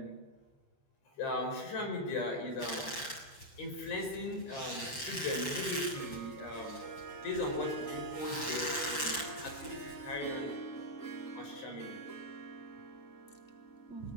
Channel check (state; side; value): late; right; 8.0 ms